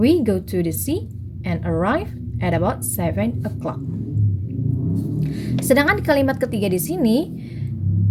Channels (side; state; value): both; identical; correlation 1.00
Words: go to the sea and arrive at about 7 o'clock. Sedangkan di kalimat ketiga di sini,